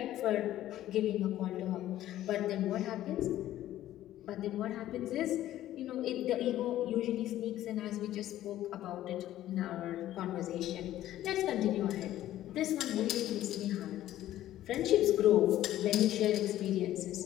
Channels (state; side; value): quieter; right; 13.5 dB